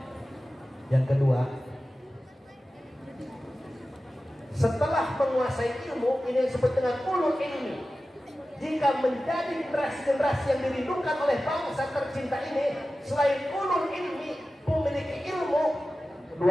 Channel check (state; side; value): normal; both; correlation 0.95